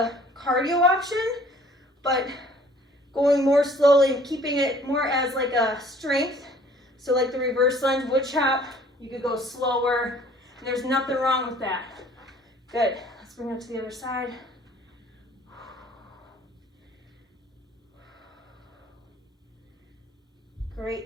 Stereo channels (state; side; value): normal; both; correlation 0.55